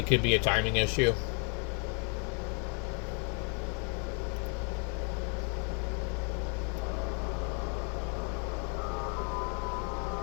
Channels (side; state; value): right; quieter; 38.2 dB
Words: could be a timing issue.